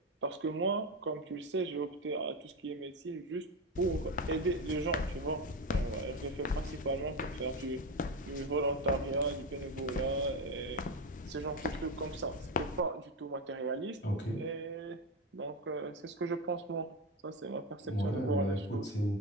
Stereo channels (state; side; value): normal; both; correlation 0.16